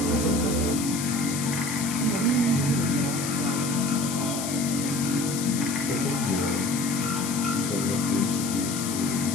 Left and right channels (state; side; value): noise; left; hiss, 5 dB below the sound